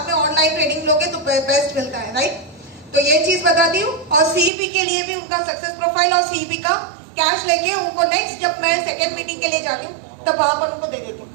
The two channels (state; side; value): drops out; left; at 4.5 s